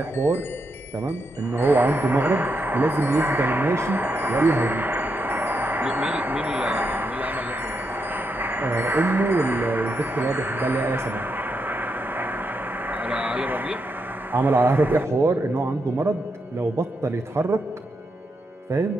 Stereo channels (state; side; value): normal; both; correlation 0.82